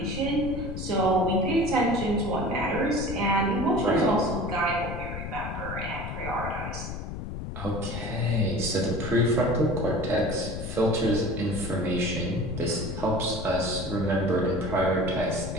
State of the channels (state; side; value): noise; left; rumble, 7 dB below the sound